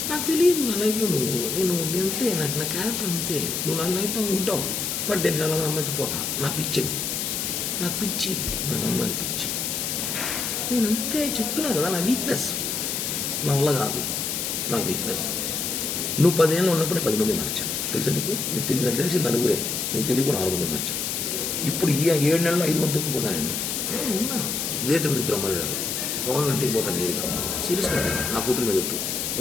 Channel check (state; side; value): noise; left; hiss, 1 dB below the sound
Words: నాకు తెలియదు నా లైఫ్లో నేను అంతే. నాకు నా క్యారెక్టర్ అంతే. నువ్వు నా లైఫ్లో ఉంటావు. బట్ నేను చాలా అమ్మాయితో పోతా. నా పిచ్చిది, నాకు పిచ్చి, నాకు అమ్మాయిలు పిచ్చి. నేను అంతే చెప్తున్నాను కదా. నా వీక్నెస్ నా వల్ల కాదు. నా వీక్నెస్. నువ్వు 10 ఏళ్ళు ఉన్నప్పుడే 10 మంది మార్చాను. తెలుసా నీకు? నీకు తెలియదు. తెలిసి నలుగురే, నీకు తెలియకుండా 4 మంది మార్చాను. ఇప్పుడు ఈ 7 నెలల్లో 5 మందికి పోతా నేను. ఉన్నా ఇదే తిరుపతి ఇద్దరు అమ్మాయిలు గవర్నమెంట్కి పోతాను నేరుగా. సీరియస్గా నా కూతురు మీద చెప్పు.